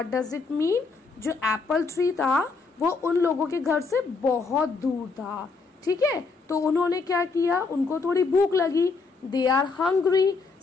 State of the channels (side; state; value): right; quieter; 4.3 dB